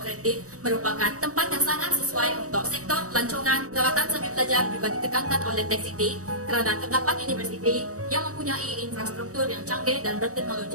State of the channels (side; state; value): left; late; 0.65 ms